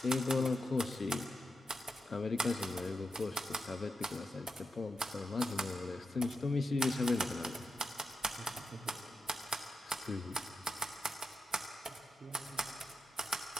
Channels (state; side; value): normal; both; correlation 0.88